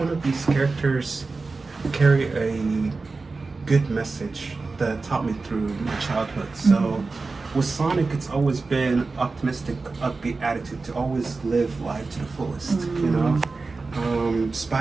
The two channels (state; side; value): quieter; left; 3.9 dB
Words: of these characters carry a good message that taught me through my childhood. So with Sonic, it's always been optimistic, upbeat attitude to always live life to the fullest,